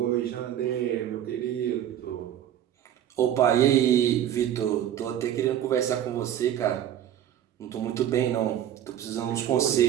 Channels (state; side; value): quieter; left; 10.9 dB